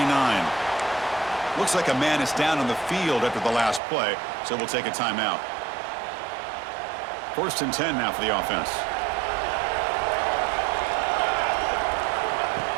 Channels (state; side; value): drops out; left; at 3.8 s